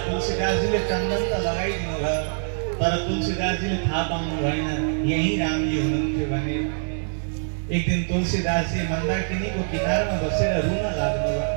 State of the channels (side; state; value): left; silent; digital silence